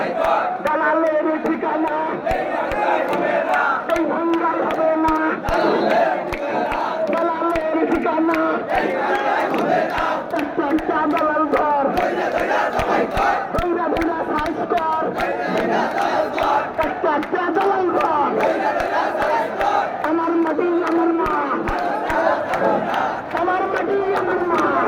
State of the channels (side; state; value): both; identical; correlation 1.00